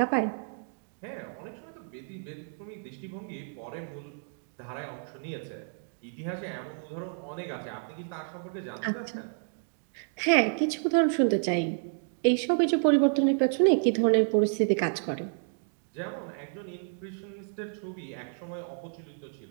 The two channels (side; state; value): left; silent; 58 dB below the other